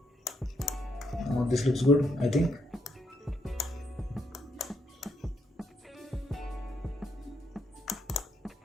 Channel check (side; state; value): both; normal; correlation 0.76